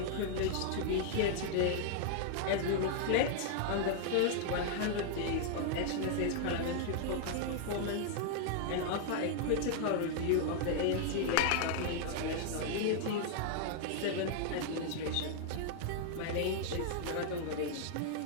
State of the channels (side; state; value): both; different; correlation 0.00